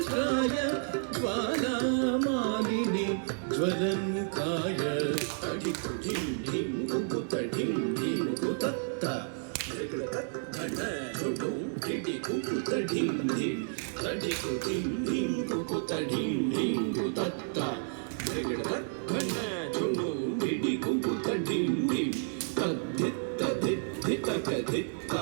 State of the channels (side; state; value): left; silent; digital silence